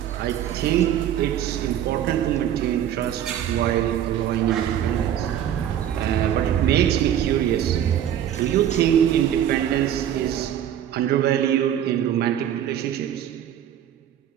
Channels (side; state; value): left; quieter; 10.4 dB